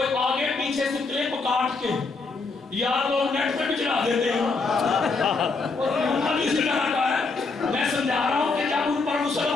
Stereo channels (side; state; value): right; quieter; 4.1 dB